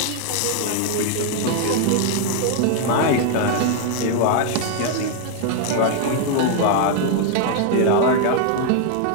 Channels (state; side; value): different; both; correlation 0.00